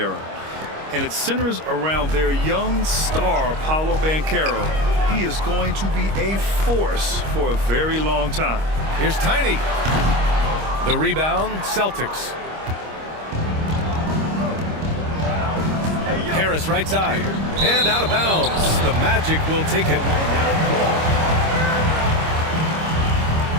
And it centers around their young star, Paolo Banchero. He is going to be a force for a very long time. Here's Tiny. The rebound, Celtics. Harris right side. And out of bounds. The Magic will take it.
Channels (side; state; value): left; late; 25 ms